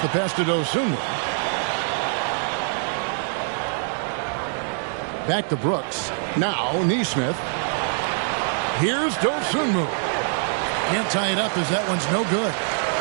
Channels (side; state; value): left; silent; 58 dB below the other